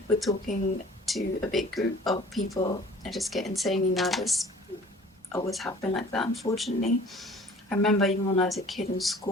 with talking to a big group of people. I just get insanely nervous. Always have been like that, unfortunately. I remember even when I was a kid in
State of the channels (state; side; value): normal; both; correlation 0.48